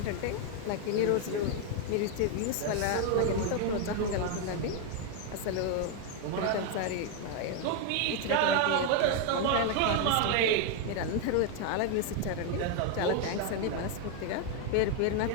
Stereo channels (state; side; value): different; both; correlation 0.01